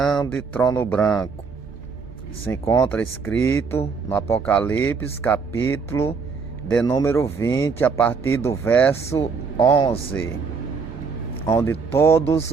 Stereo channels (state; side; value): quieter; left; 5.2 dB